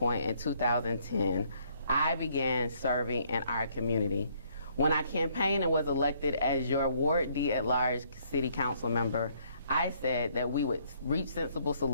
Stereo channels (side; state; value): both; inverted; correlation -0.67